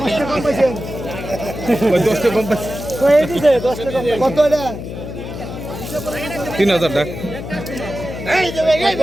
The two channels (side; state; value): left; noise; hum, 8 dB below the sound